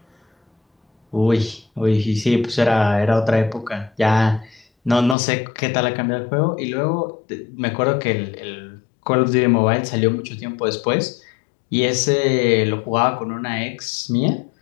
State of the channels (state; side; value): drops out; right; at 5.2 s